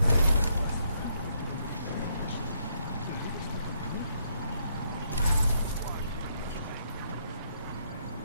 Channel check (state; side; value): inverted; both; correlation -0.74